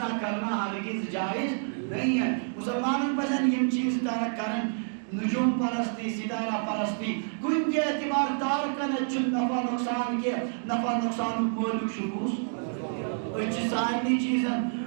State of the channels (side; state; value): left; silent; digital silence